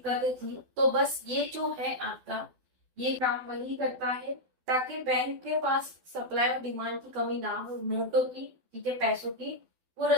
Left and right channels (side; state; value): left; late; 12 ms